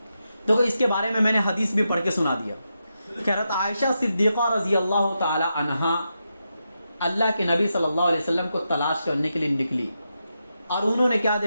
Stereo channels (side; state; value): both; inverted; correlation -0.86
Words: تو اس کے بارے میں نے حدیث بھی پڑھ کے سنا دیا کہ حضرت عائشہ صدیقہ رضی اللہ تعالی عنہا اللہ کے نبی صلی اللہ علیہ وسلم کو تلاش کرنے کے لیے نکلی، اور انہوں نے کیا